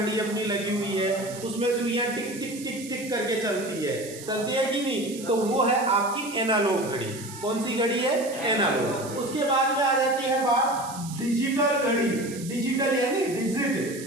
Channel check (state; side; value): noise; right; hiss, 14 dB below the sound